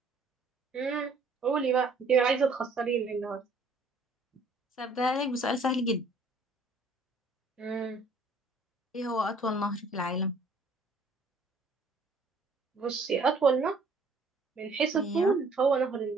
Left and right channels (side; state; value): left; quieter; 3.3 dB